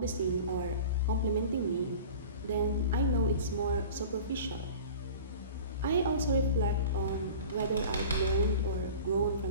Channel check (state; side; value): inverted; both; correlation -0.38